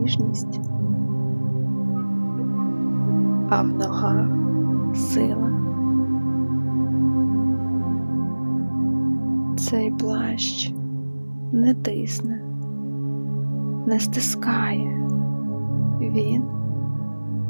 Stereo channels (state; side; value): inverted; both; correlation -1.00